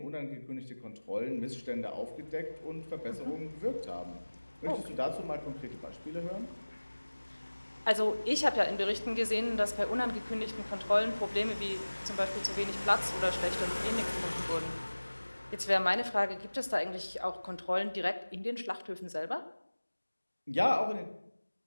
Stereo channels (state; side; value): inverted; both; correlation -1.00